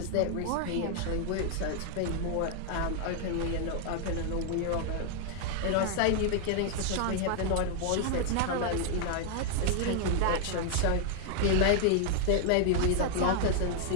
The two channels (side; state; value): both; different; correlation 0.00